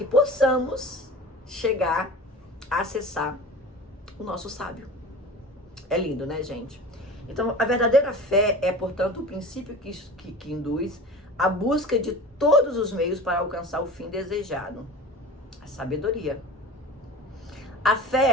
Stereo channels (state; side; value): normal; both; correlation 0.36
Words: possamos chegar a acessar o nosso sábio. É lindo, né, gente? Então, a verdadeira fé é, portanto, o princípio que induz a busca de todos os meios para alcançar o fim desejado, a sabedoria. A